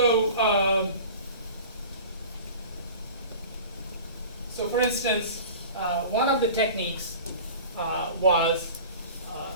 so for instance, one of the techniques was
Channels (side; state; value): both; inverted; correlation -0.39